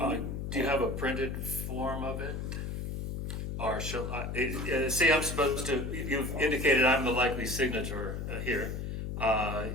you have a printed form of it? Or shall I, say I'm supposed to, you've indicated I'm the likely signature here.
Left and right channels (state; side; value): noise; left; hum, 4 dB below the sound